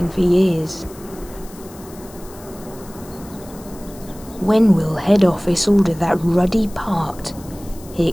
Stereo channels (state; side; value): noise; left; hiss, 21 dB below the sound